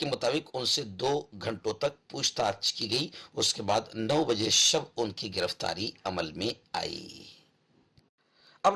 مطابق ان سے 2 گھنٹوں تک پوچھ تاچھ کی گئی۔ اس کے بعد 9 بجے شب ان کی گرفتاری عمل میں آئی۔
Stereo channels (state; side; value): identical; both; correlation 1.00